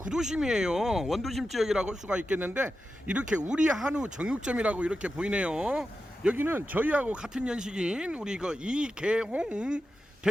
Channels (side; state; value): both; normal; correlation 0.91